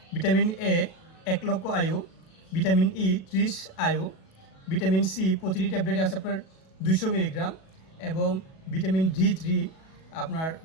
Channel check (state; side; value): late; right; 37 ms